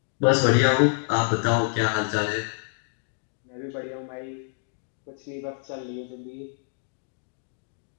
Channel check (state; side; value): silent; right; 60 dB below the other